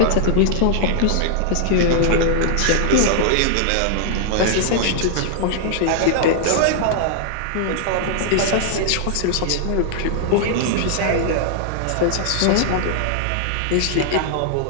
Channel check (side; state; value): both; different; correlation -0.01